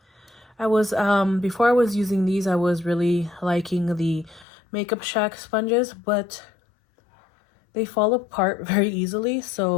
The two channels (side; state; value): right; drops out; at 4.5 s